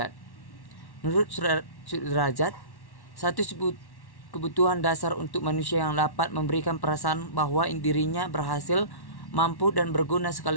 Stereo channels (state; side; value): late; right; 1.1 ms